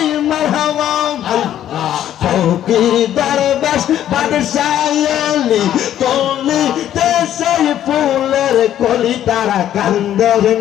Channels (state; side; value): quieter; right; 11.3 dB